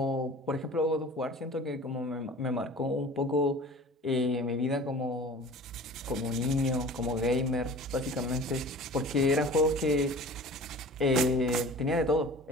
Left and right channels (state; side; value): normal; both; correlation 0.41